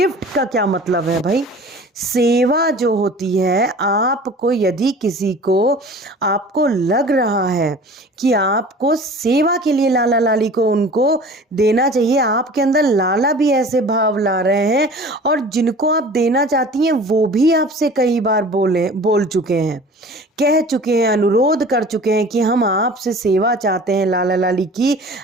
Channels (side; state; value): both; normal; correlation 0.43